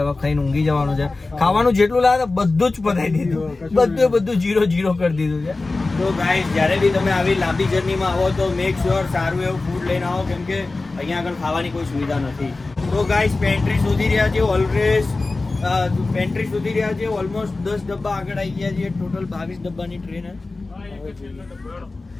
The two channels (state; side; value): quieter; right; 3.4 dB